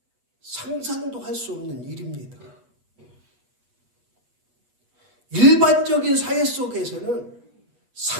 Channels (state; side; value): late; left; 8.3 ms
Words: 상상도 할 수 없는 일입니다. 일반적인 사회 속에서는